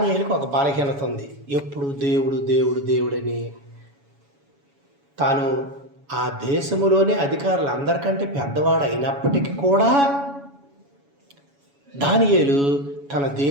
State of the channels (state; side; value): late; left; 7.1 ms